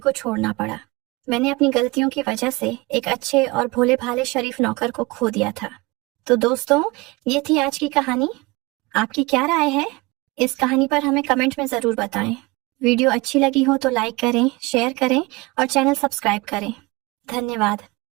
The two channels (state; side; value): quieter; left; 23.7 dB